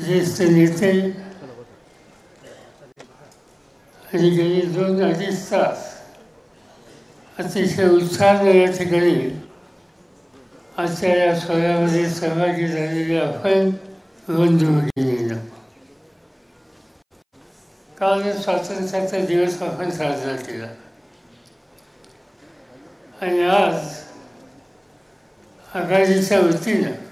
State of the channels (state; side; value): identical; both; correlation 1.00